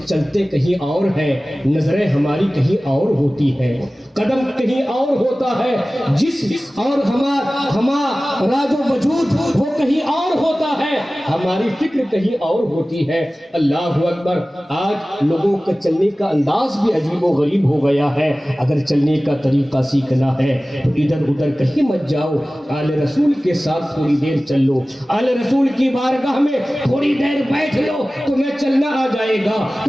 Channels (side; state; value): both; normal; correlation 0.97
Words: چلتے کہیں اور ہیں، نظریں ہماری کہیں اور ہوتی ہیں، قدم کہیں اور ہوتا ہے، جسم اور ہمارا جو وجود وہ کہیں اور ہوتا ہے، ہماری فکر کہیں اور ہوتی ہے۔ اللہ اکبر، آج لوگوں کا چلنے کا انداز بھی عجیب و غریب ہو گیا ہے۔ اگر چلنے کا طریقہ سیکھنا ہے تو ادھر ادھر کہیں مت جاؤ، آل رسول کے ساتھ تھوڑی دیر چل لو، آل رسول کی بارگاہ میں تھوڑی دیر بیٹھ لو، تمہیں چلنا آ جائے گا،